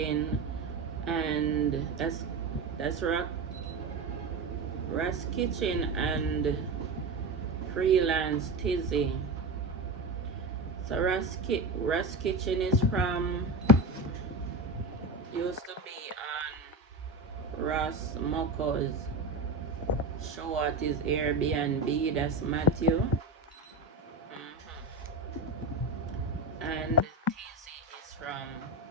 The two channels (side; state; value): left; quieter; 3.2 dB